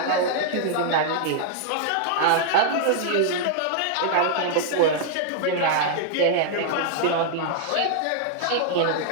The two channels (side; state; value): both; different; correlation -0.01